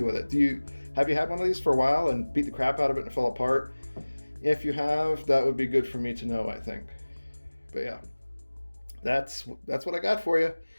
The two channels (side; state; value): both; inverted; correlation -1.00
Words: with it. Have you had one of these for a while and beat the crap out of it and it fell apart? If you have, that would be good for me to know, I think. But yeah, that's what I got for you.